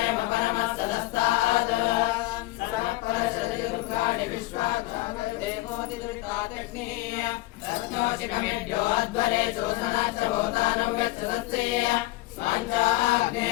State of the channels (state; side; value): quieter; right; 19.0 dB